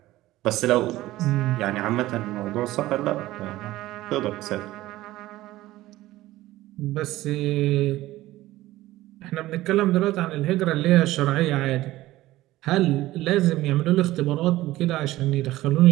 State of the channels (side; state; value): left; quieter; 16.6 dB